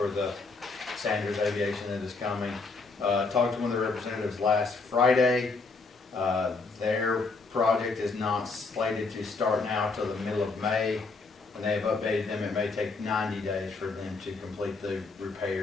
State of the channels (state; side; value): quieter; right; 4.0 dB